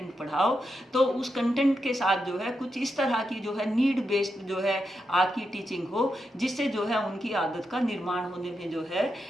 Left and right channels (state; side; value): normal; both; correlation 0.86